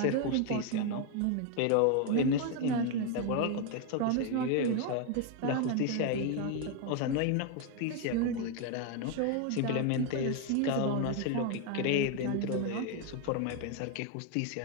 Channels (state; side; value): different; both; correlation 0.01